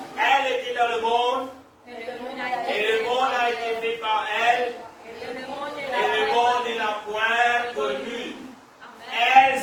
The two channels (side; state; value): both; identical; correlation 1.00